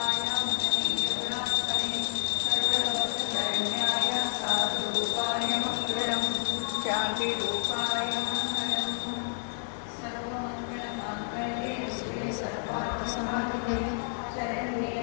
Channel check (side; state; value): right; silent; 58 dB below the other